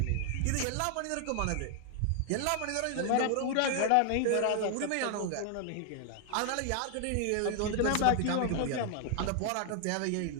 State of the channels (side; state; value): both; different; correlation 0.00